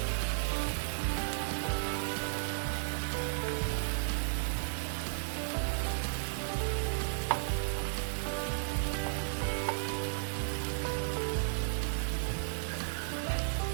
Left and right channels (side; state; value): left; silent; digital silence